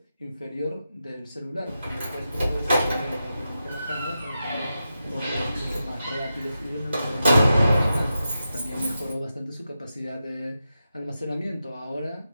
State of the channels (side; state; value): both; inverted; correlation -0.89